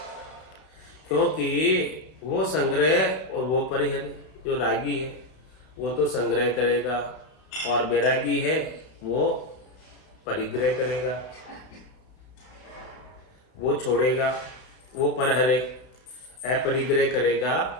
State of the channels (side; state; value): right; late; 32 ms